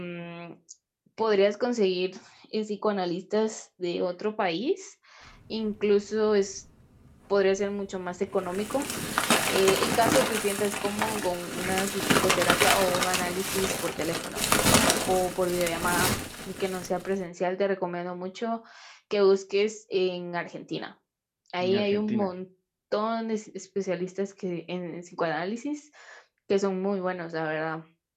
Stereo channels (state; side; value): identical; both; correlation 1.00